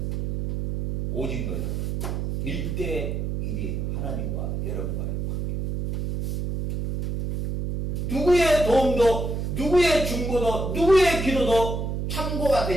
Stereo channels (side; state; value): right; noise; hum, 2 dB below the sound